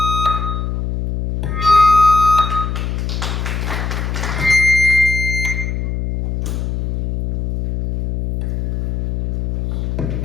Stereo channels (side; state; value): left; noise; hum, 2 dB below the sound